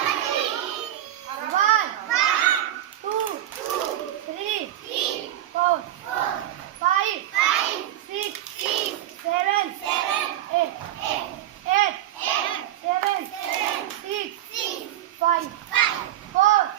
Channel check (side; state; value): left; quieter; 12.9 dB